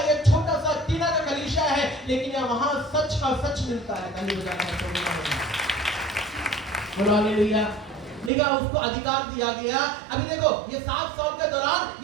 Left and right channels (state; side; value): drops out; left; at 8.3 s